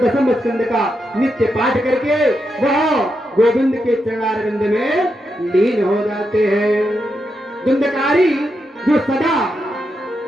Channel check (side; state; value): both; normal; correlation 0.84